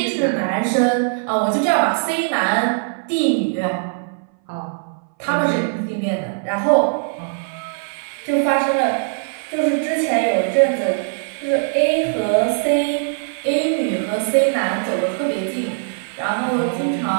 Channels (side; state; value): left; silent; 60 dB below the other